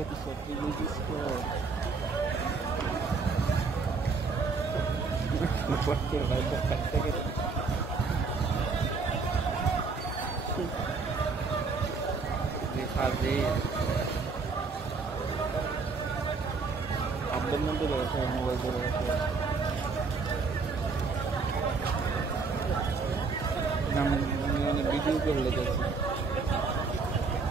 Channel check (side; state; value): left; quieter; 4.5 dB